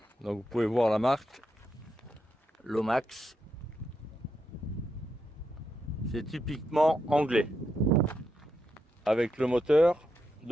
Donc vous pouvez voir la marque Lomax. C'est typiquement anglais. Avec le moteur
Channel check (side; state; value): both; normal; correlation 0.83